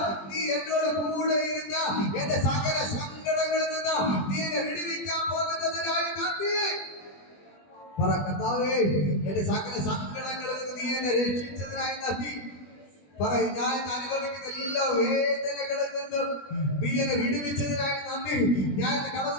നീ എന്നോട് കൂടെ ഇരുന്ന് എന്റെ സകല സങ്കടങ്ങളിൽ നിന്ന് നീ എന്നെ വിടുവിക്കാൻ പോകുന്നതിനായി നന്ദി. പറ, കർത്താവേ, എന്റെ സകല സങ്കടങ്ങളിൽ നിന്ന് നീ എന്നെ രക്ഷിച്ചതിനായി നന്ദി. പറയും, ഞാൻ അനുഭവിക്കുന്ന എല്ലാ വേദനകളിൽ നിന്നും നീ എന്നെ വിടുവിച്ചതിനായി നന്ദി. ഞാൻ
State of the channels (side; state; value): right; late; 20 ms